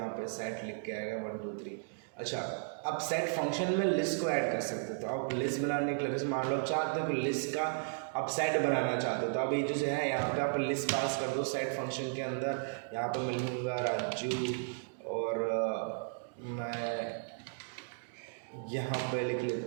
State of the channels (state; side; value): silent; left; digital silence